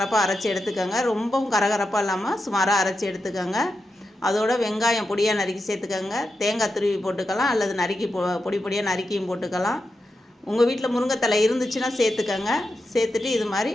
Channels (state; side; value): normal; both; correlation 0.88